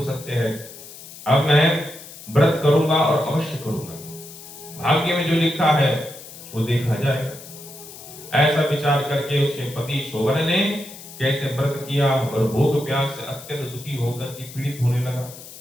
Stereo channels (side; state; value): left; noise; hiss, 16 dB below the sound